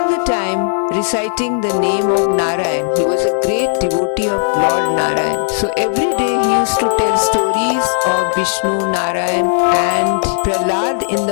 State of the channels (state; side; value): silent; right; 67 dB below the other